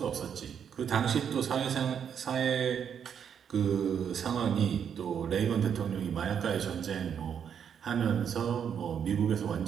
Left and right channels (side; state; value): left; quieter; 8.0 dB